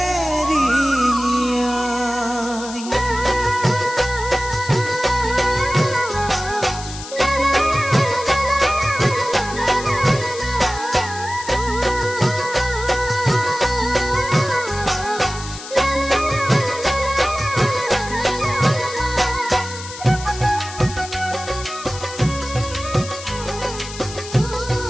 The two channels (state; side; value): noise; left; hiss, 12 dB below the sound